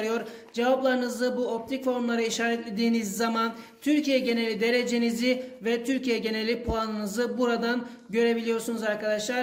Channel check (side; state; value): both; identical; correlation 1.00